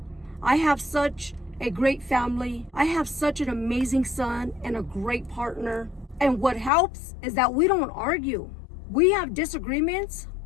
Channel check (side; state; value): right; drops out; at 6.7 s